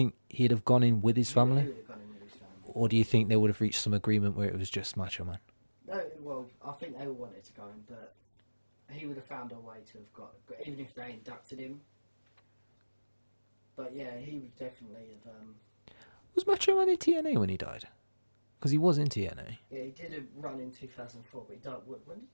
he'd have gone in with his family? He would have gone in with his family. Or do you think they would have reached some agreement where it was just Macho Man? No, well, I think they all wanted to go in, but he would have found a way to have got even if they inducted him. But yeah, he would definitely have... Was Macho Man in TNA when he died? Because he was in TNA. Yeah, he did a run in 2004, but he died... When did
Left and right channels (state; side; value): inverted; both; correlation -1.00